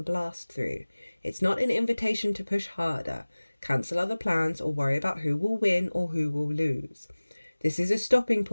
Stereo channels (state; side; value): inverted; both; correlation -1.00